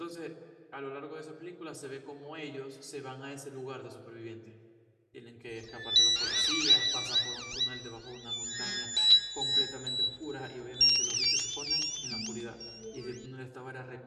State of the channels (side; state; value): both; identical; correlation 1.00